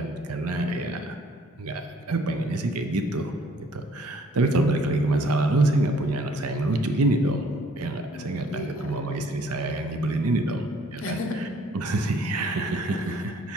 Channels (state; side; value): normal; both; correlation 0.60